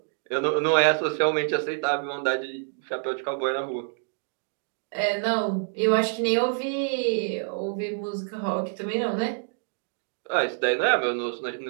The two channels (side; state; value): left; silent; digital silence